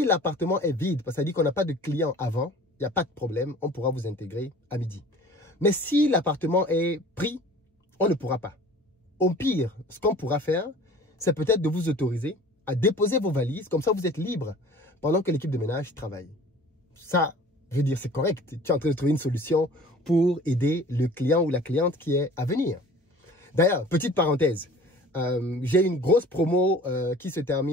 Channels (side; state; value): both; normal; correlation 0.46